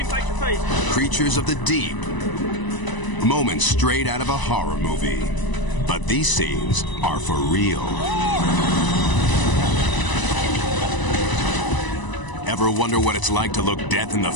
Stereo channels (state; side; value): late; right; 1.0 ms